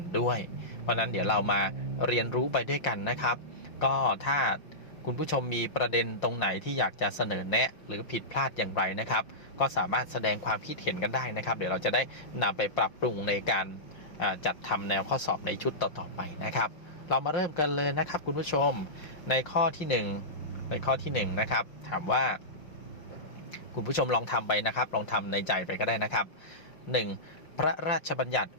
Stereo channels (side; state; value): right; late; 5.7 ms